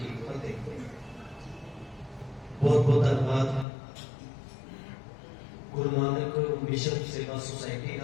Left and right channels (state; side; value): drops out; right; at 3.7 s